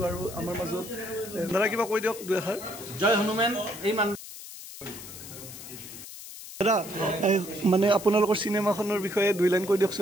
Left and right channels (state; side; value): noise; left; hiss, 13 dB below the sound